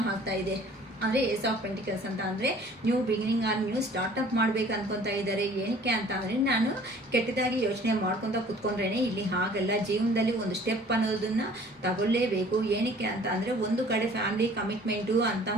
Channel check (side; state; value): both; normal; correlation 0.51